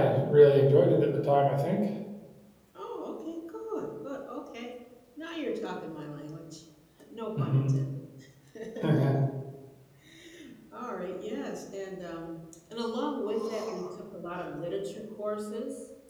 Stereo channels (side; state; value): both; identical; correlation 1.00